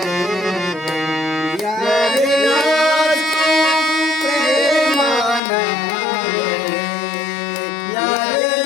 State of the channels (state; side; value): drops out; right; at 5.4 s